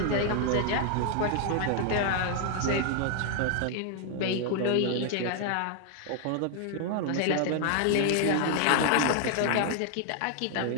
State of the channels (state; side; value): different; both; correlation 0.00